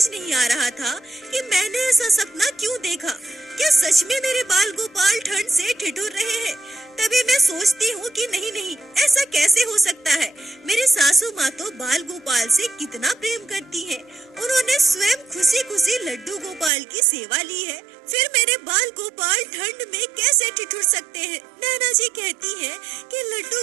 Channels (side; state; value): left; drops out; at 16.7 s